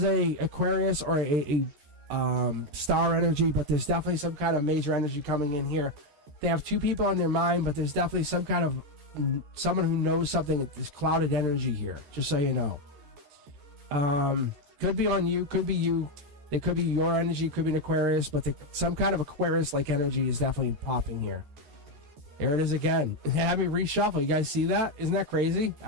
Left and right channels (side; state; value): left; late; 14 ms